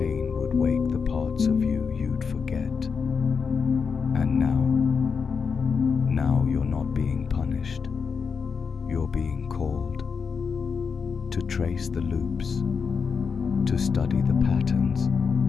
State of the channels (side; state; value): right; quieter; 5.7 dB